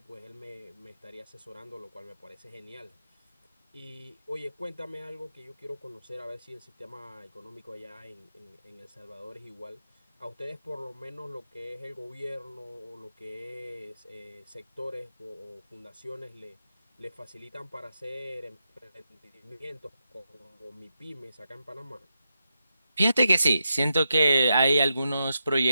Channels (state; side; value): inverted; both; correlation -0.87